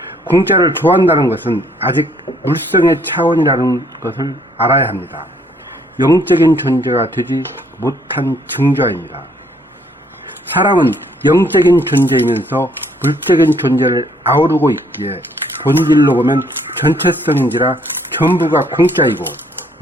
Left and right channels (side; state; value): both; normal; correlation 0.66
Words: 공짜를 좋아한다는 것은 아직 물성의 차원이라는 것을 알아야 합니다. 영적인 존재가 되지 못한 증조입니다. 사람은 영적인 존재이면서 물적인 존재를 아우르고 있기에 본질로 보면 전체성인지라 전부가 공짜이고